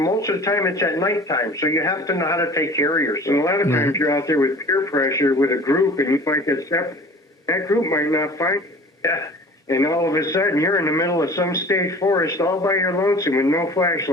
of the time it's at nighttime, so you have to know how to take care of yourself. And a lot of times you're out there with peer pressure with a group, and you might get separate. That group might not find you. Yeah. And all of a sudden, you're in the middle of some state forest all by your lonesome with no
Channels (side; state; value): both; normal; correlation 0.44